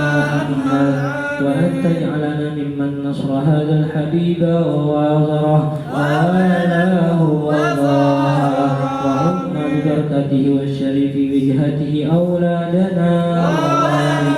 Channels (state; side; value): identical; both; correlation 1.00